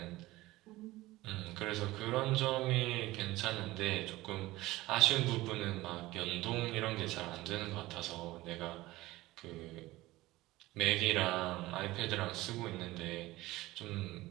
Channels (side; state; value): left; quieter; 18.4 dB